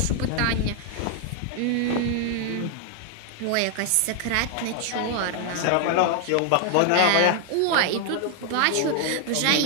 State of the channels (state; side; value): different; both; correlation 0.00